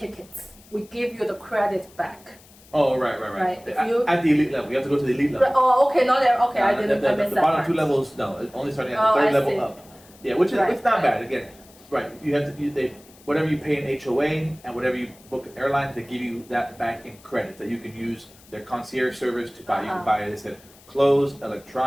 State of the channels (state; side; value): noise; left; hiss, 25 dB below the sound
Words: we give you the credit back. Oh, right. Right. If At, you- at the elite level, you have to go to the elite level. Oh, okay, not there. Okay, I No, didn't. I missed the that bottom part. two levels, no, only starting at Oh, the third I level see. up. Yeah, which is Right, it's not right. bad. Again, right? You have to. whatever you pay in HOA and whatever you book in airlines, they give you that back in credits that you can use their concierge service to buy. You can buy, they said, clothes,